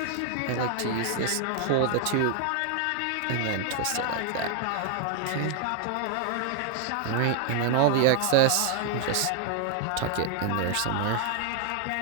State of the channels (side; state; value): both; different; correlation 0.00